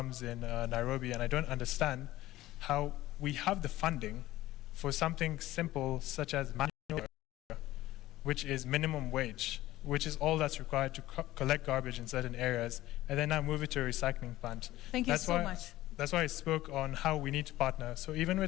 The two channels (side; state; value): right; quieter; 16.0 dB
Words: in Nairobi, and I don't understand how we have the funding for something simple such as manual labor, which is minimum wage, which is all that's required to collect garbage in certain areas, and then now move it to a recycling plant. Thank you so much. That's why I spoke on how we need to partner. So even